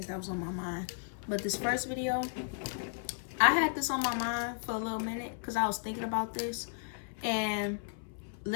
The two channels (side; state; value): right; silent; 55 dB below the other